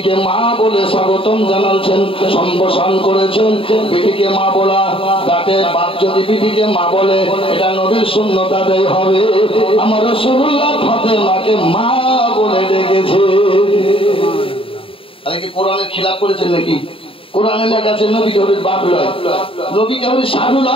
মা বলে স্বাগতম জানাচ্ছেন, সম্বোধন করেছেন। বেটিকে মা বলা, তাতে বাপ যদি বেটিকে মা বলে, এটা নবীর সুন্নাত আদায় হবে। আমার রাসূলুল্লাহ ফাতেমাকে মা বলে ডেকেছে। আরে কি কোরআনের খিলাফ করেছেন নাকি? কোরআনে লেখা আছে নবী কেবল বাপ নয়, নবী কেবল সাধু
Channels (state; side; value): late; right; 0.26 ms